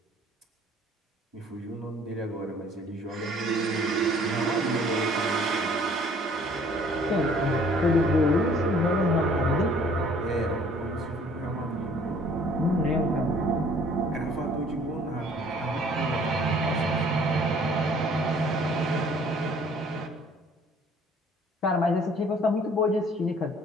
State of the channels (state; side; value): normal; both; correlation 0.56